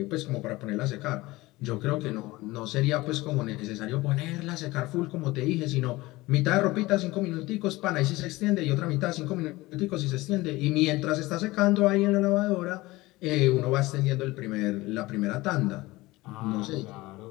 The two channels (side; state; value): right; quieter; 20.1 dB